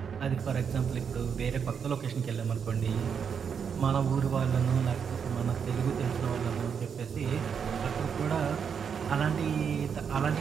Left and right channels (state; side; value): quieter; left; 6.9 dB